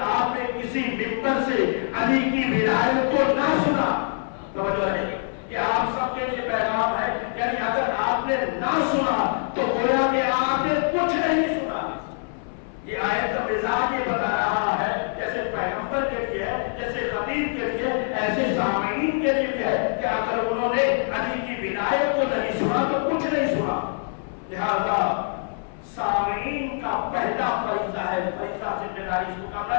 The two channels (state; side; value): silent; right; 59 dB below the other